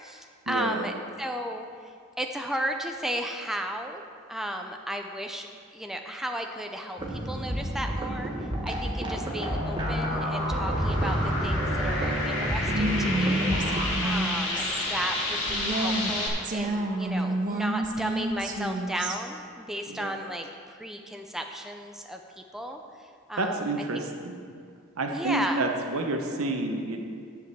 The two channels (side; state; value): both; normal; correlation 0.56